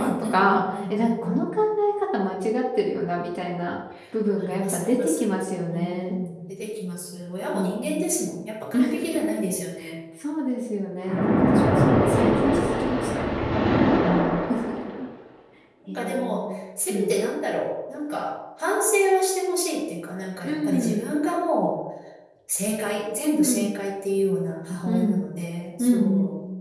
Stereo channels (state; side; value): identical; both; correlation 1.00